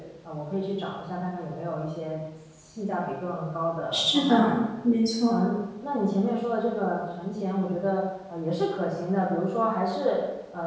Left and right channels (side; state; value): both; identical; correlation 1.00